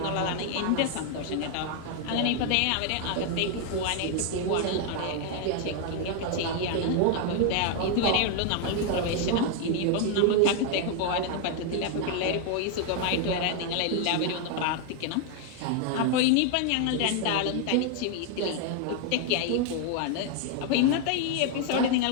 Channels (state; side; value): different; both; correlation 0.00